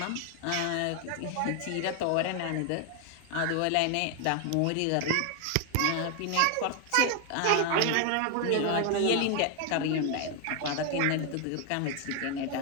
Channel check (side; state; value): both; different; correlation 0.00